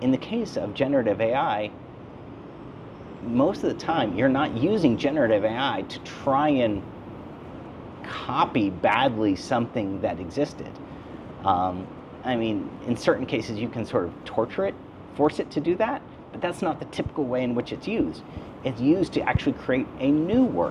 In the case of generative AI, most of the time you're not using generative AI to try and copy badly something that existed. I mean, in certain cases you can sort of torture it, force it to do that, but that's not the typical way in which it's used. It's used to actually create a new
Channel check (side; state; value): both; identical; correlation 1.00